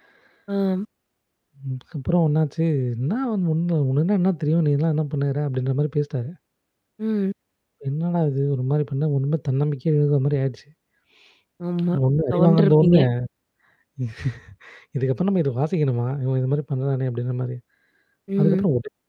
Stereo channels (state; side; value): identical; both; correlation 1.00